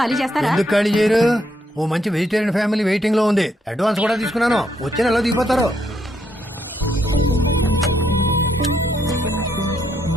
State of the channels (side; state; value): both; normal; correlation 0.75